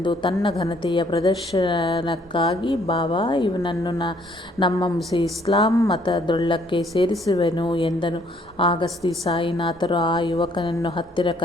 ತನ್ನ ಘನತೆಯ ಪ್ರದರ್ಶನಕ್ಕಾಗಿ, ಬಾಬಾ, ಇವನನ್ನು ನಮ್ಮ ಇಸ್ಲಾಂ ಮತದೊಳಕ್ಕೆ ಸೇರಿಸುವೆನು ಎಂದನು. ಆಗ ಶ್ರೀ ಸಾಯಿನಾಥರು ಆ ಯುವಕನನ್ನು ಹತ್ತಿರ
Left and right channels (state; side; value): normal; both; correlation 0.65